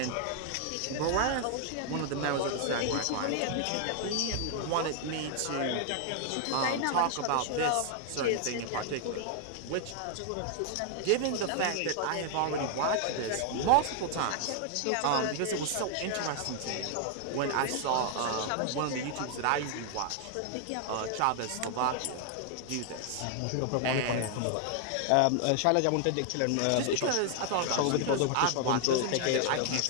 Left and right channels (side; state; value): both; different; correlation 0.00